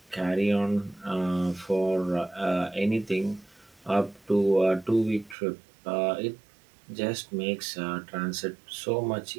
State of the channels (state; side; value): drops out; left; at 5.4 s